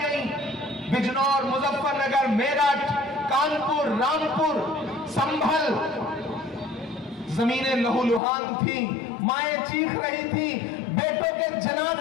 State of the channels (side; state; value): right; drops out; at 8.2 s